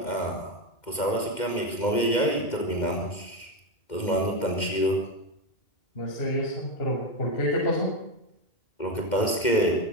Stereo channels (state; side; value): late; right; 2.1 ms